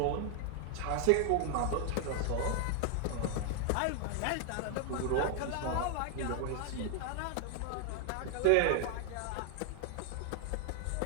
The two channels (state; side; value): different; both; correlation 0.00